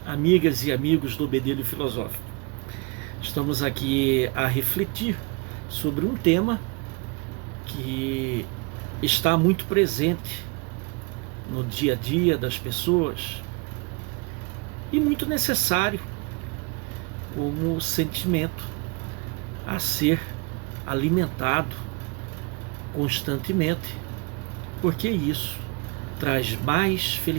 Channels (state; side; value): quieter; left; 29.1 dB